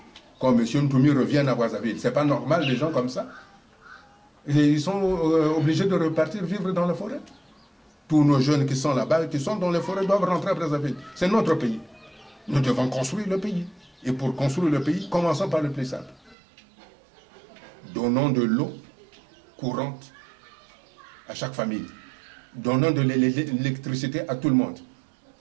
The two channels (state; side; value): drops out; left; at 16.4 s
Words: comme M. Ntoumi revienne à Brazzaville. Ce n'est pas normal, des gens comme ça. Et ils sont obligés de repartir vivre dans la forêt. Tous nos jeunes qui sont là-bas, qui sont dans les forêts, doivent rentrer à Brazzaville. C'est notre pays. Nous devons construire le pays. Et pour construire le pays, commençons par le plus simple. Donnons de l'eau courante à chaque famille. Donnons de l'électricité à tout le monde,